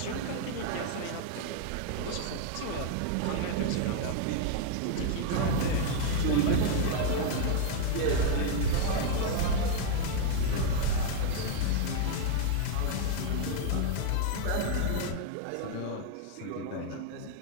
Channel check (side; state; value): both; different; correlation 0.00